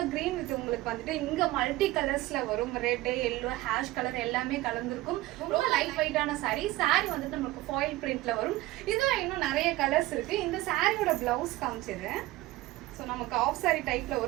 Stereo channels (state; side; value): quieter; left; 18.0 dB